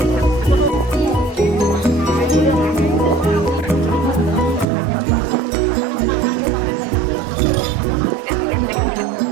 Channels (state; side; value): drops out; left; at 4.7 s